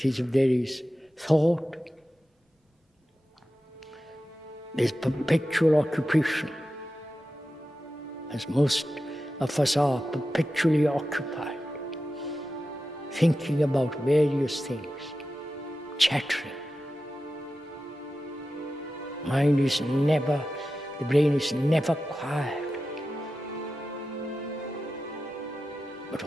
is, if there is thought, there's perpetual occupation, as most of us are perpetually occupied, thinking about various things, chattering. The brain is never quiet, but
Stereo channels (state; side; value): normal; both; correlation 0.92